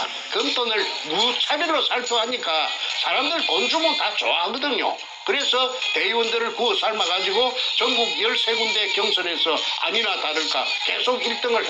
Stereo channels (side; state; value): both; identical; correlation 1.00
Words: 금돈을 무차별로 살포하니까 사람들 돈 주면 다 좋아하거든요. 그래서 대의원들을 구워 삶아가지고 전국 13군데 경선에서 아니나 다를까 계속 1등을